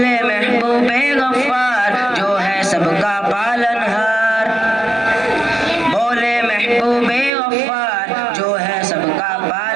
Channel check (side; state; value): left; drops out; at 7.3 s